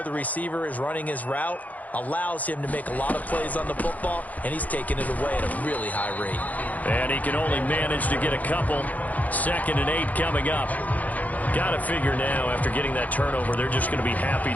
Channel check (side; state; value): right; late; 0.077 ms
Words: the receiver is running his route allows him to make a lot of plays on the football, and he's taking it away at a really high rate. And he can only manage to get a couple. 2nd and 8 coming up. Got to figure now, after getting that turnover, they're just going to be happy